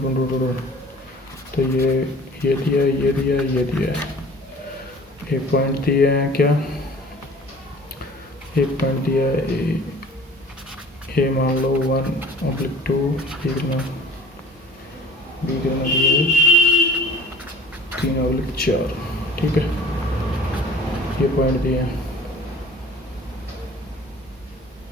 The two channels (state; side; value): normal; both; correlation 0.47